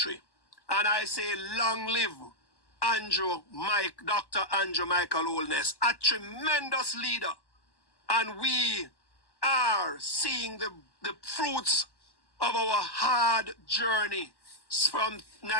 And I say, long live Dr. Andrew Michael Holness, a tremendous leader. And we are seeing the fruits of our hard journey from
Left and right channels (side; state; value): right; late; 1.1 ms